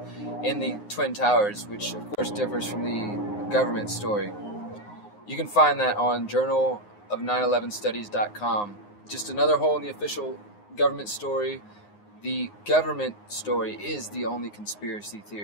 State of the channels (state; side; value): late; right; 9.6 ms